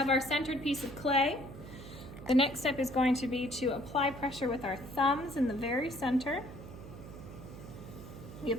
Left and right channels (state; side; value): noise; right; hum, 13 dB below the sound